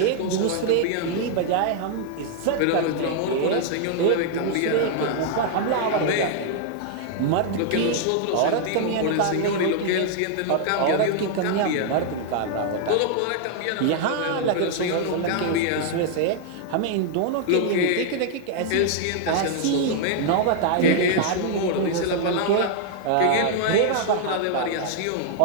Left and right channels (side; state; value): both; different; correlation 0.00